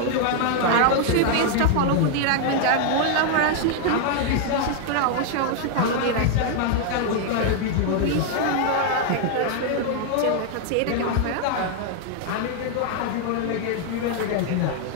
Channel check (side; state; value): both; different; correlation 0.00